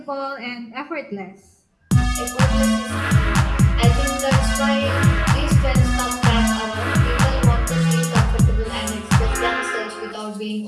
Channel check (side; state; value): both; identical; correlation 1.00